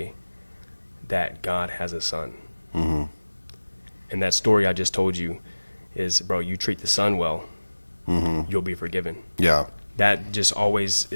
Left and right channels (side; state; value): both; inverted; correlation -1.00